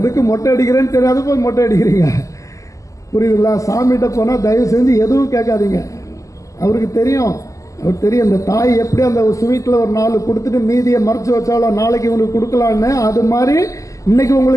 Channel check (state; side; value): late; right; 0.16 ms